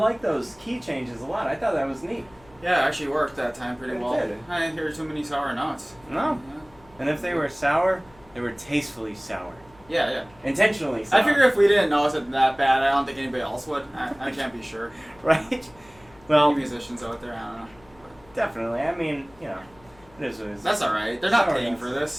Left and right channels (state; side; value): noise; left; hum, 27 dB below the sound